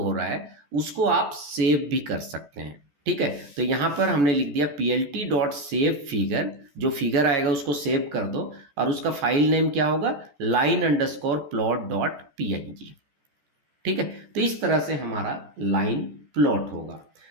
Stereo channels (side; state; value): left; late; 14 ms